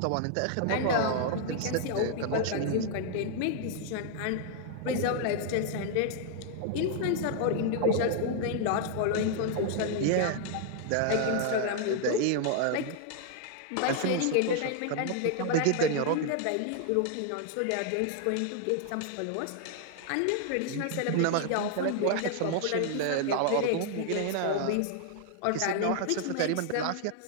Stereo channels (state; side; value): different; both; correlation 0.00